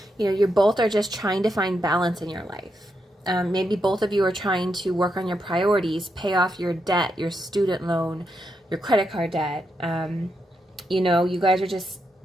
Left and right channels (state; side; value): normal; both; correlation 0.83